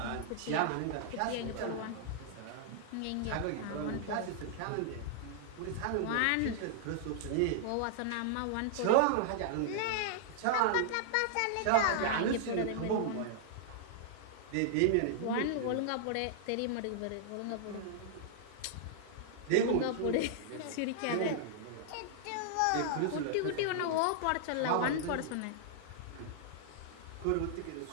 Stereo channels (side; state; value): both; different; correlation -0.01